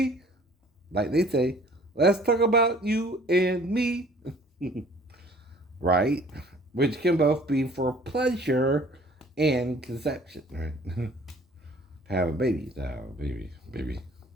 Like they say, let's talk about you and me. Right? Which can both be for pleasure and conception, right? Have a baby, baby.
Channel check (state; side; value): normal; both; correlation 0.53